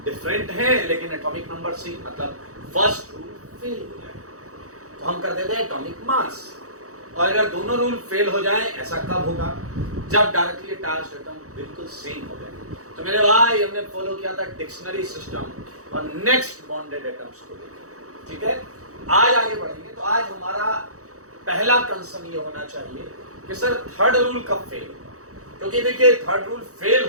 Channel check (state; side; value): late; left; 0.65 ms